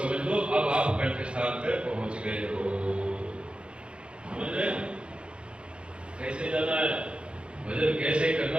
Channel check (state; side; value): late; left; 0.057 ms